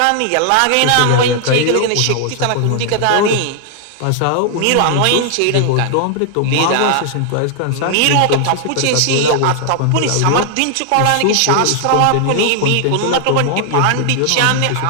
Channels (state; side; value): different; both; correlation 0.00